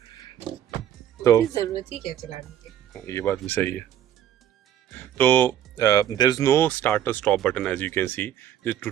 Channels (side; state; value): left; quieter; 10.6 dB